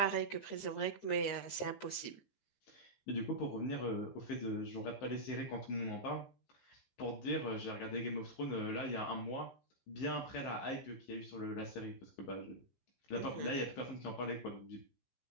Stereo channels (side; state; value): right; late; 15 ms